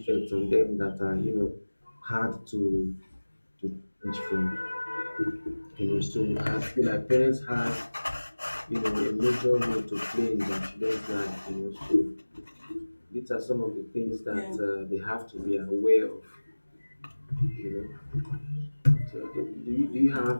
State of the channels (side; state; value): both; inverted; correlation -1.00